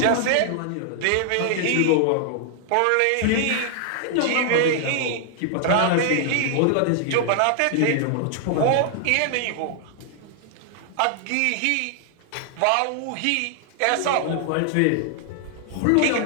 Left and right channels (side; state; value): both; different; correlation 0.00